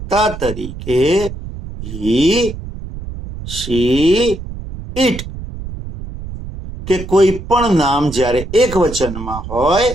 તરીકે હી, શી, ઇટ કે કોઈ પણ નામ જ્યારે એક વચનમાં હોય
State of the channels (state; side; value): noise; right; rumble, 10 dB below the sound